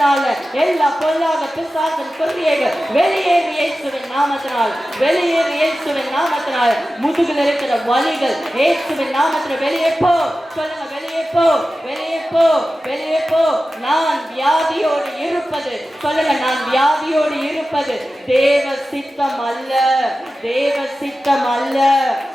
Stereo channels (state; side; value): normal; both; correlation 0.94